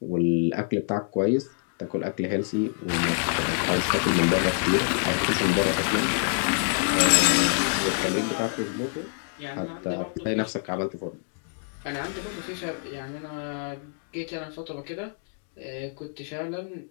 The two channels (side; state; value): right; silent; digital silence